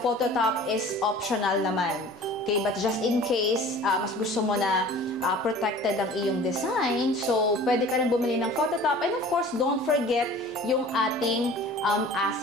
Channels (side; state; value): both; normal; correlation 0.44